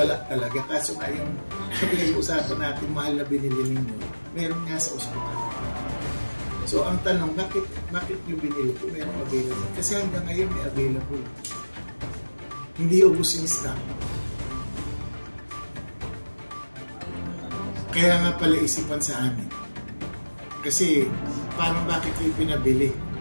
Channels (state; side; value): inverted; both; correlation -1.00